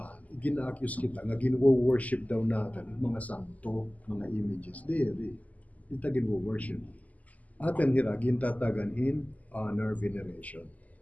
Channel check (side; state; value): right; late; 0.076 ms